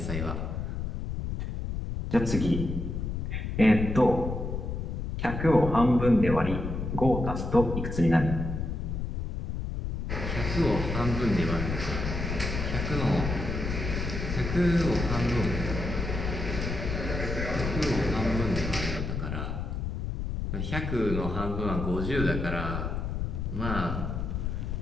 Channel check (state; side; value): noise; left; rumble, 3 dB below the sound